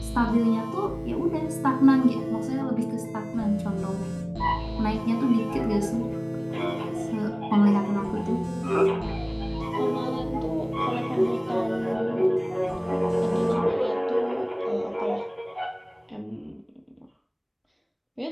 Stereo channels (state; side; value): identical; both; correlation 1.00